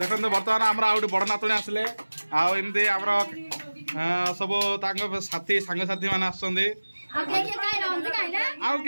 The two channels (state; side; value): inverted; both; correlation -1.00